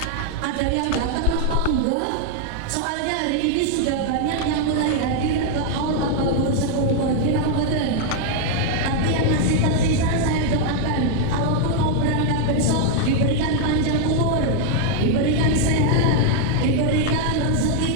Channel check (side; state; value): both; different; correlation 0.00